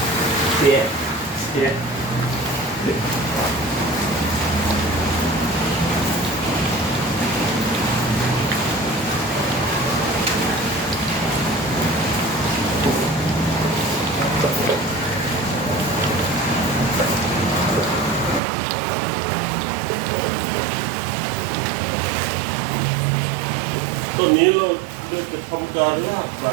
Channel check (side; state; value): left; drops out; at 18.4 s